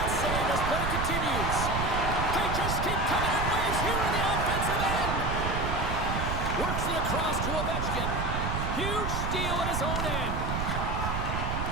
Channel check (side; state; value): right; noise; rumble, 1 dB below the sound